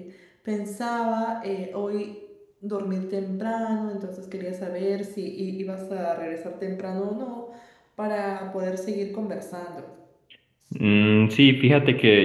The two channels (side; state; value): both; identical; correlation 1.00